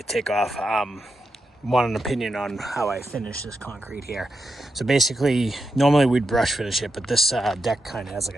take off, want an opinion on how I finish this concrete here. So basically, normally we'd brush finish it, but this deck kind of has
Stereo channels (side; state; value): both; normal; correlation 0.86